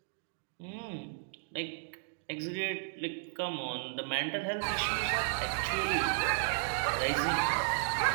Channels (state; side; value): silent; left; digital silence